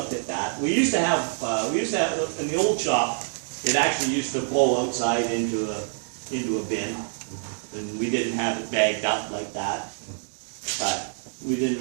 at that. We used to have in the old shop, it actually used to blow outside into a bin, and we didn't have it bagged up like that. But we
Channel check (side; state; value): left; silent; 59 dB below the other